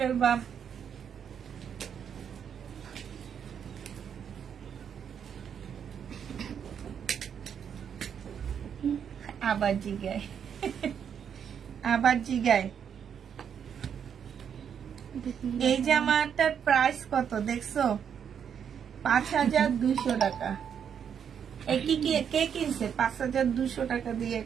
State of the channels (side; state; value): left; quieter; 7.9 dB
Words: ফেলবা। আবার জিগায় এই জামাটার প্রাইস কত দেখছো? 5200 টাকা। কে কিনছে 5200 টাকা দিয়ে?